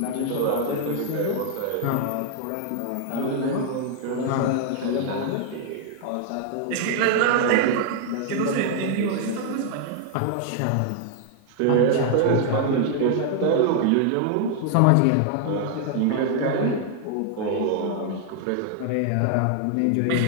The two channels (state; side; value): different; both; correlation 0.00